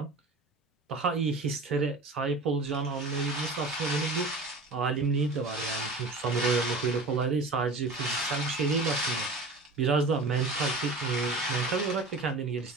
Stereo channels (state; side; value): quieter; left; 3.3 dB